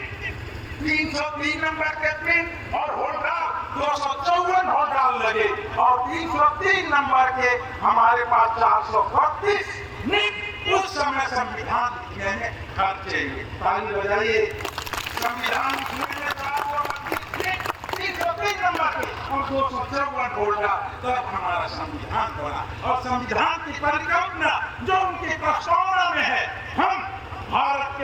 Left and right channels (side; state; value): both; identical; correlation 1.00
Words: 303 नंबर के पिन और होल्डाल 254 होल्डाल लगे और 303 नंबर के हमारे पास 432 नित उस समय संविधान लिखने में खर्चे हुए। ताली बजाइए। संविधान लिखने में 303 नंबर के और 254 होल्डाल, तब हमारा संविधान बना। और संविधान की परिकल्पना जो उनकी प्रस्तावना में है, हम भारत